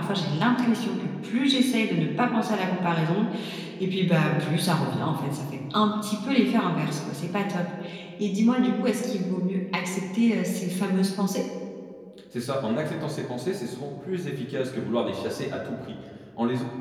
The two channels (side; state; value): both; identical; correlation 1.00